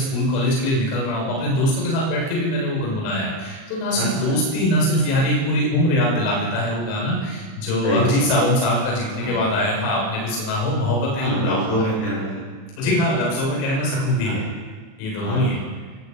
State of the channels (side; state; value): right; late; 37 ms